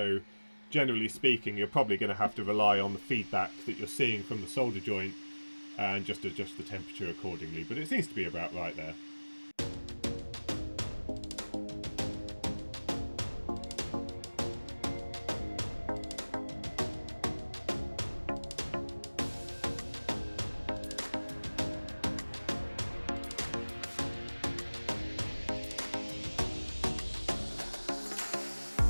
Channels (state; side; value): inverted; both; correlation -1.00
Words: generally speaking you're probably going to have to rely on the feedback that you're seeing from the solder joint and just adjust the temperature accordingly, but it seems to be about right there.